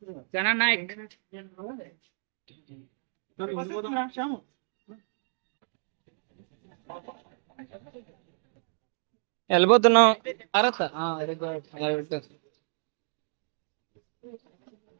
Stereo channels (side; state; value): left; silent; digital silence